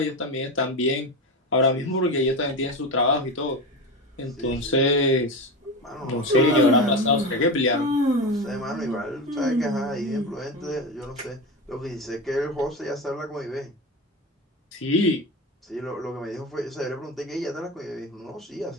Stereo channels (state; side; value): normal; both; correlation 0.22